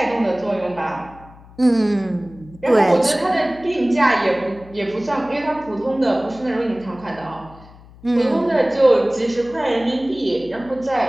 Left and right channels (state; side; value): noise; left; hum, 22 dB below the sound